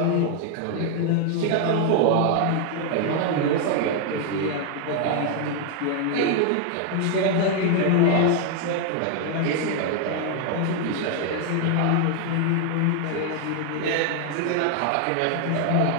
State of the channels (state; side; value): different; both; correlation 0.00